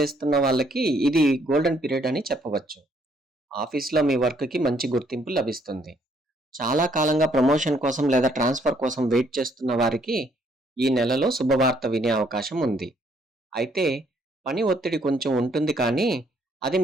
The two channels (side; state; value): both; normal; correlation 0.67